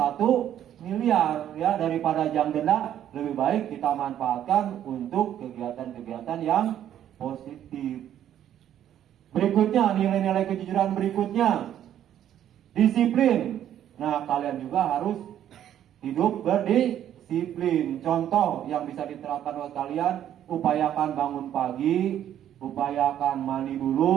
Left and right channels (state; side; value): quieter; left; 10.8 dB